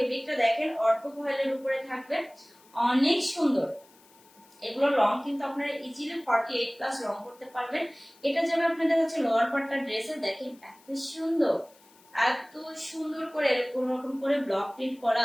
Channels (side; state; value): left; noise; hiss, 28 dB below the sound